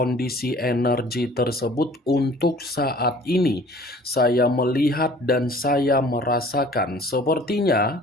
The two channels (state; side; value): normal; both; correlation 0.50